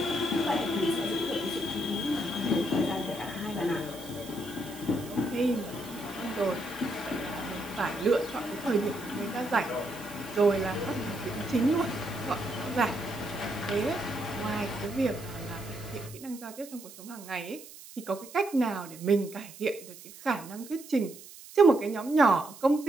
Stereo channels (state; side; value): noise; right; hiss, 17 dB below the sound